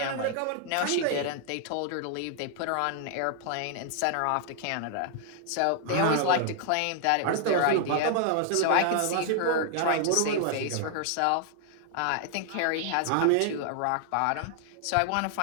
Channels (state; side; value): different; both; correlation 0.00